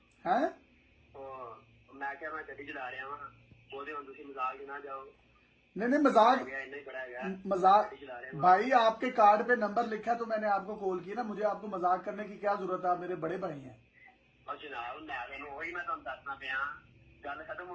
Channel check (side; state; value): both; identical; correlation 1.00